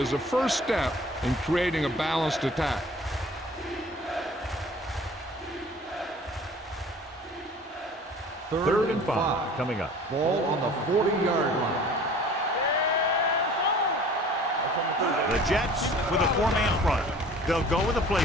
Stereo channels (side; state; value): both; normal; correlation 0.47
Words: the first step in creating a balanced attack. Third and 5 coming up. Ball on the 40-yard line. The Jets with a four-man front. They'll go with a play